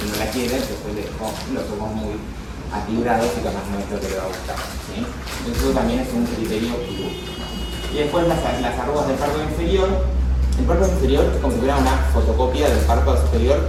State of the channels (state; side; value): identical; both; correlation 1.00